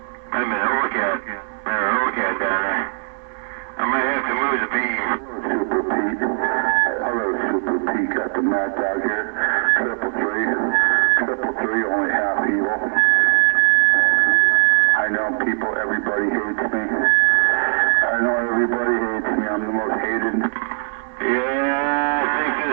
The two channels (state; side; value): silent; left; 66 dB below the other